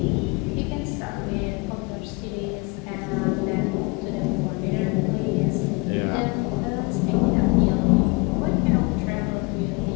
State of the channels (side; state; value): right; quieter; 28.6 dB